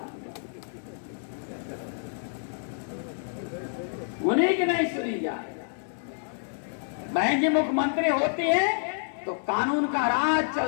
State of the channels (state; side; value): silent; right; digital silence